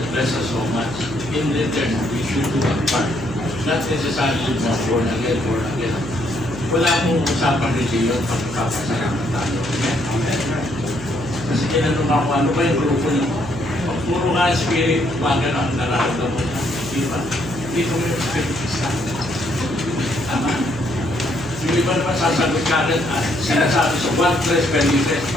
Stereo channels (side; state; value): right; noise; hum, 13 dB below the sound